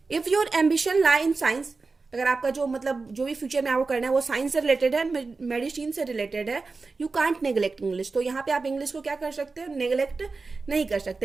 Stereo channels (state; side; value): quieter; left; 4.1 dB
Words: If your ambition lie in science, अगर आपका जो मतलब जो भी फ्यूचर में आपको करना है वो साइंस से रिलेटेड है, मेडिसिन से रिलेटेड है, यू कांट नेग्लेक्ट इंग्लिश, तो यहाँ पे आप इंग्लिश को क्या कर सकते हो, नेग्लेक्ट नहीं कर